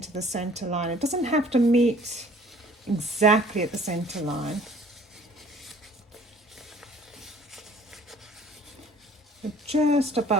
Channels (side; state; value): both; normal; correlation 0.54